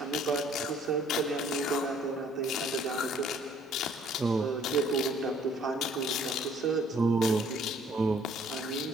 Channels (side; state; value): both; normal; correlation 0.60